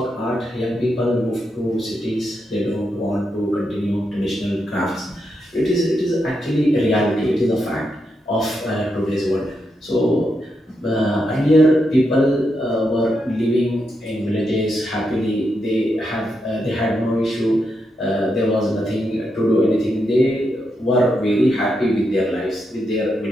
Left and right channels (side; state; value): both; normal; correlation 0.83